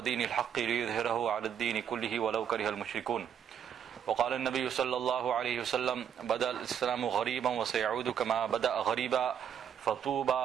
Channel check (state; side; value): quieter; left; 8.6 dB